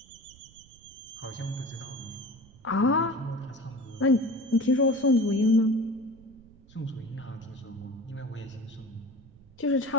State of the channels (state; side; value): noise; right; rumble, 24 dB below the sound